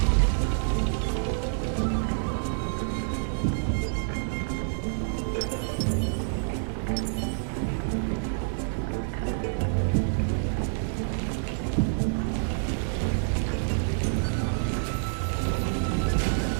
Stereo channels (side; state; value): left; silent; 60 dB below the other